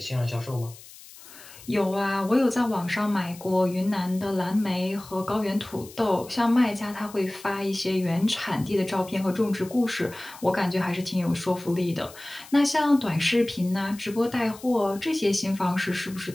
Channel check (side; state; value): left; noise; hiss, 19 dB below the sound